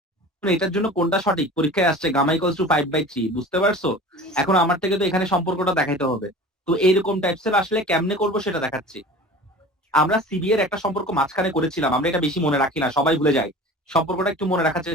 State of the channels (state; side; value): normal; both; correlation 0.39